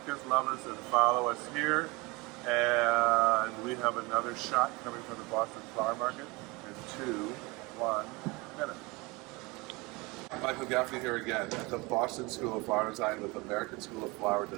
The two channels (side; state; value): left; quieter; 25.1 dB